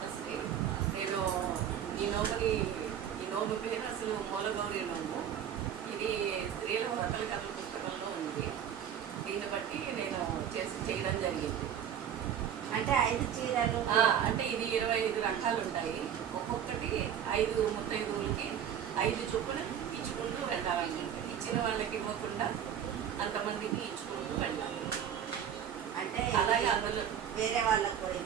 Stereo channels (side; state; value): left; quieter; 9.2 dB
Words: నేను ఈ నోము పేరు అసలు మూలగౌరి నోము. ఇది స్త్రీల వ్రతల కథల పుస్తకంలో ఉంది. దీన్ని బట్టి నేను చేయడం జరిగింది. అంటే 5 చీరలు అంటే ఇది 25 రకాలు ఉంటాయి. ఒక్కొక్కటి 5 ముత్తైదువులకి 5 చొప్పున ఇచ్చుకుంటూ వెళ్ళాలనుకుంటే, ఇచ్చిన వాళ్ళకి ఇవ్వకుండా అంతమందికి ఇచ్చుకుంటూ వెళ్ళాలి. అంటే అలాగే అందులో వేరే